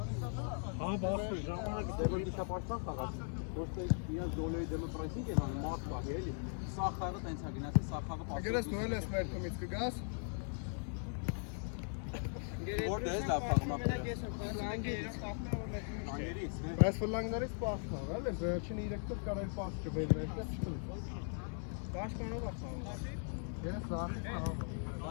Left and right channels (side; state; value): right; silent; 52 dB below the other